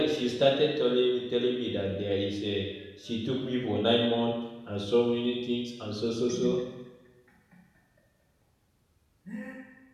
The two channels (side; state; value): both; identical; correlation 1.00